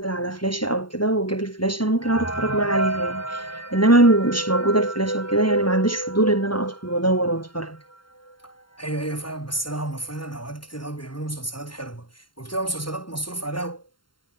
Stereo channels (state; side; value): late; right; 0.72 ms